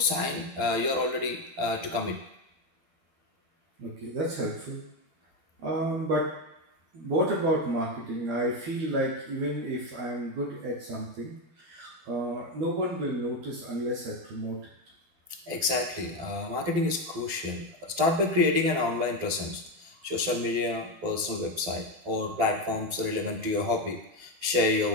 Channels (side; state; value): left; late; 12 ms